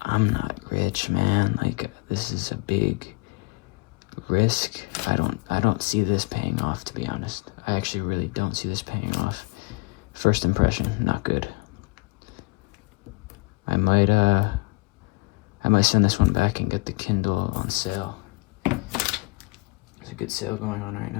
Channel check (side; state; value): right; quieter; 26.9 dB